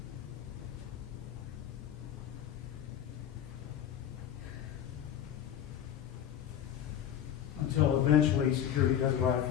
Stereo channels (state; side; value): quieter; right; 9.9 dB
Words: Until eventually security does arrive